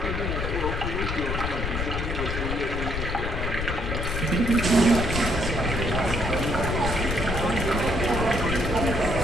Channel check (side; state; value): left; noise; rumble, 3 dB below the sound